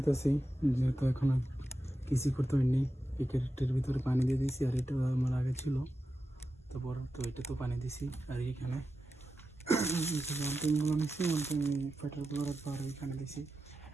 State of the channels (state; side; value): normal; both; correlation 0.90